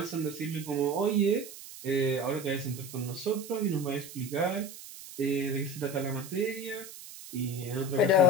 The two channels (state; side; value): noise; right; hiss, 14 dB below the sound